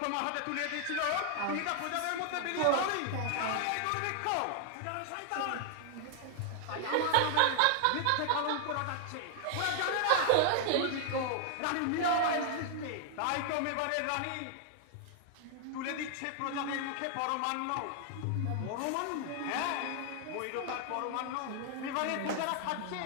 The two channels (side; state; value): both; different; correlation 0.00